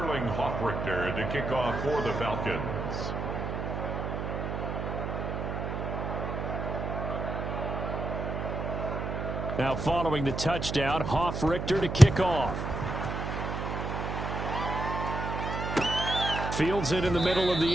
Hoffrichter to kick off for the Falcons. Now following the touchdown, Hoffrichter to kick off. Fields it in the middle of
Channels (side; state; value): right; noise; hum, 3 dB below the sound